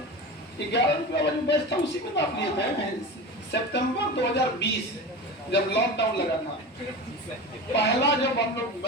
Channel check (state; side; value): normal; both; correlation 0.29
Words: 11 रुपया वाली बैच था, उसी में तो आप लिए थे। सितंबर 2020 जब लॉकडाउन लगा था, पहला जब हम लोग